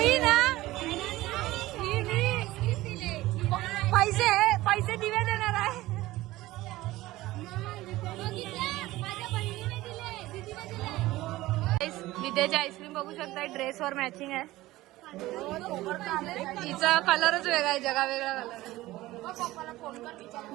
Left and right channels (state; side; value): quieter; left; 17.5 dB